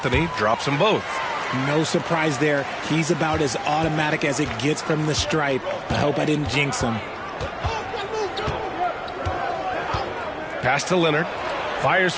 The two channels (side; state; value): both; identical; correlation 1.00